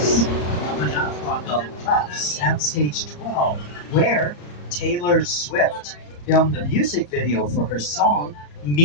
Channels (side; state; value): right; late; 34 ms